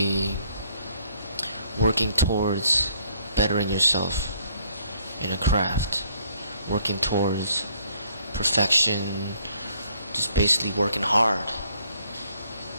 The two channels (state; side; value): inverted; both; correlation -0.65